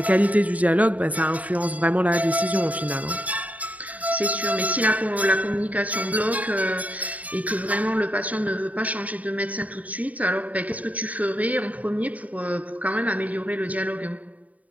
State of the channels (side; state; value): left; late; 0.072 ms